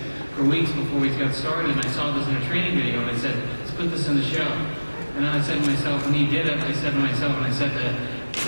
for weeks before we got started, and I saw this in a training video, and I said, let's put this in the show. And then I said to myself, when he did it, I said to myself, and I said that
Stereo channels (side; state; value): both; inverted; correlation -1.00